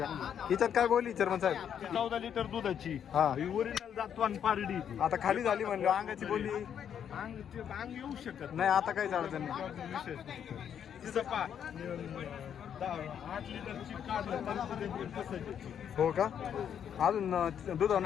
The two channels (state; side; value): quieter; right; 8.7 dB